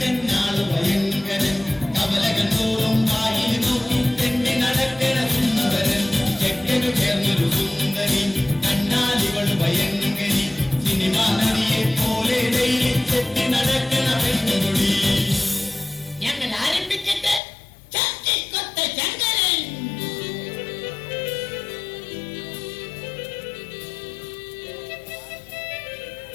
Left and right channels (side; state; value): right; drops out; at 17.4 s